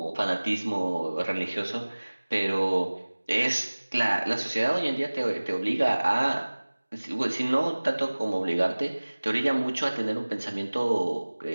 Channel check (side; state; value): both; inverted; correlation -1.00